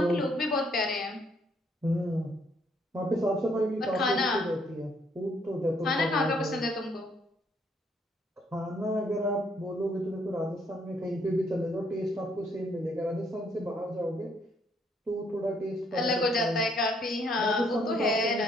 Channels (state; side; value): normal; both; correlation 0.68